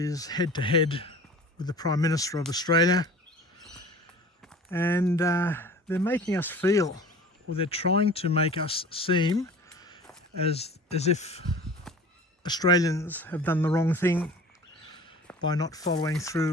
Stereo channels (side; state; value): both; normal; correlation 0.42